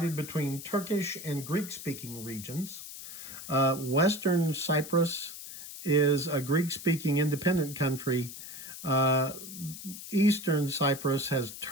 between Turkish and Greek-speaking regions. Western Cyprus is a Greek-speaking independent country. Eastern Cyprus has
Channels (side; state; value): left; noise; hiss, 11 dB below the sound